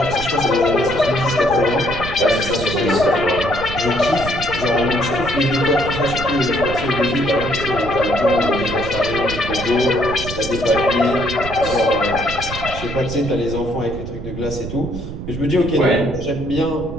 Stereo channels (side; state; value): right; noise; rumble, 9 dB below the sound